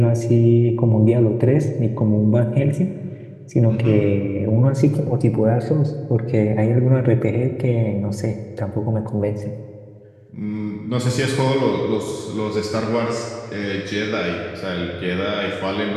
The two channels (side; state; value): both; identical; correlation 1.00